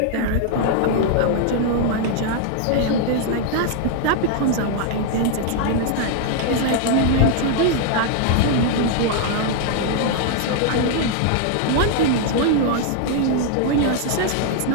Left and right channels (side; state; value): both; different; correlation 0.00